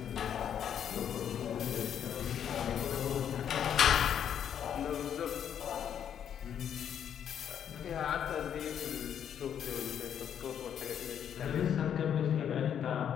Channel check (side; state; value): right; quieter; 9.0 dB